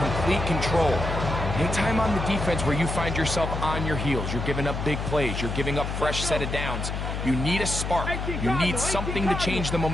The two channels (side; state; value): left; noise; hum, 4 dB below the sound